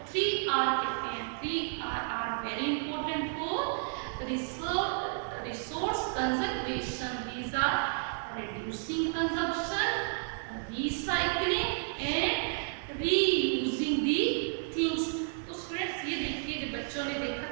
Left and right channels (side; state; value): left; silent; 56 dB below the other